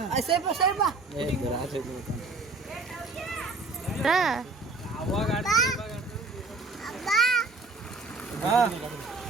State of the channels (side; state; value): left; quieter; 3.6 dB